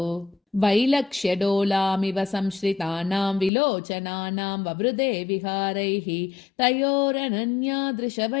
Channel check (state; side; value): drops out; right; at 3.5 s